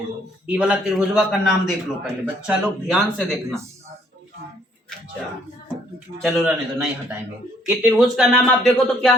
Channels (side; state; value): both; normal; correlation 0.65